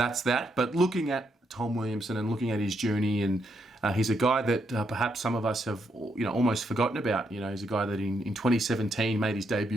that. But looking at Tom Williamson and looking at his journey, and he's a guy that perhaps some of us have almost forgotten about. He's a guy that in 2017 made his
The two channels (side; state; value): both; normal; correlation 0.78